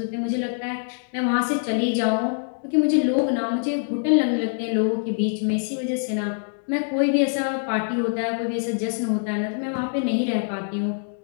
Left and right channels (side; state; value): right; silent; digital silence